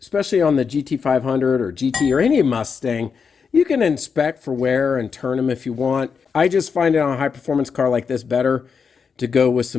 on the GT500 or GT or any Mustang, you can inspect for wear and turn them if you want. I just find it on a high performance car like this better to go with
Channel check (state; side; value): quieter; right; 5.9 dB